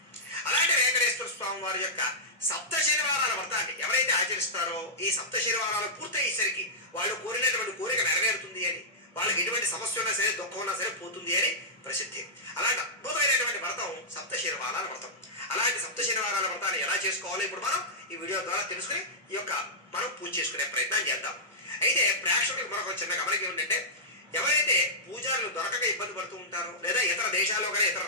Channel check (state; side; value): normal; both; correlation -0.12